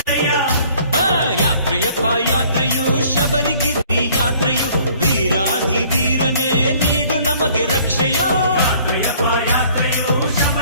ಯಾತ್ರೆಯಪ್ಪ ಯಾತ್ರೆಯು ಶಬರಿಗಿರಿ ಯಾತ್ರೆಯು ವೀರಾಧಿ ವೀರನೇ ನೀಡು ನಮಗೆ ರಕ್ಷೆಯೋ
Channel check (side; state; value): both; inverted; correlation -0.57